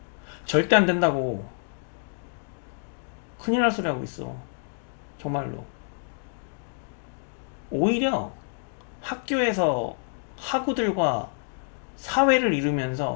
절대 안 된다고. 큰일 날 소리 하고 있어. 정말로. 오히려 학교에서 학우들과 사회를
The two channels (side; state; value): right; silent; 60 dB below the other